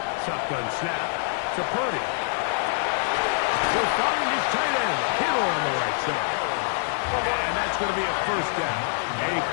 Shotgun snap to Purdy. He'll find his tight end, Kittle on the right side. And that's going to be a 1st down. A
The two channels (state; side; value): silent; right; digital silence